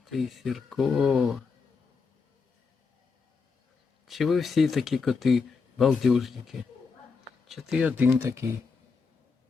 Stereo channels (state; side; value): quieter; right; 4.9 dB